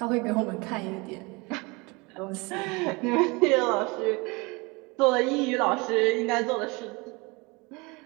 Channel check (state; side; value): quieter; left; 26.6 dB